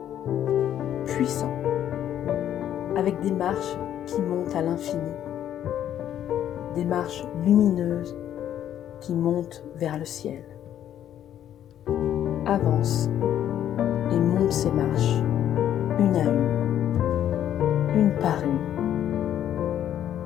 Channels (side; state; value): right; quieter; 10.8 dB